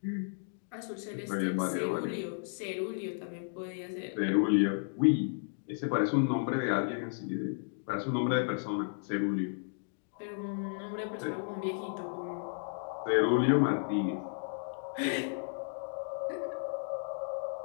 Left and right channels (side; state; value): right; silent; digital silence